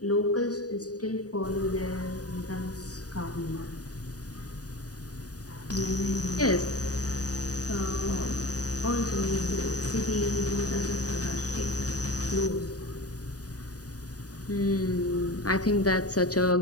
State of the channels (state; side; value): late; right; 0.68 ms